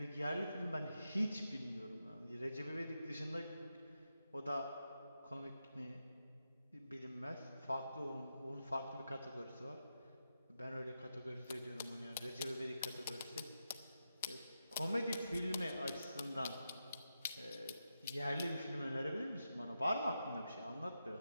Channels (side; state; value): both; inverted; correlation -0.88